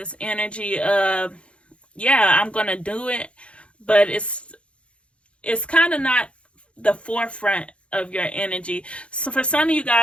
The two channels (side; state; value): right; late; 0.060 ms